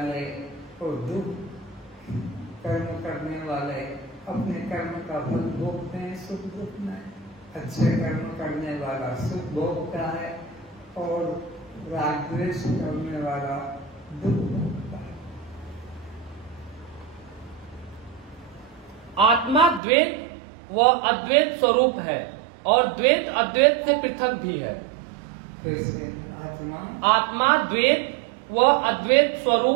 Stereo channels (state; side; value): drops out; left; at 19.8 s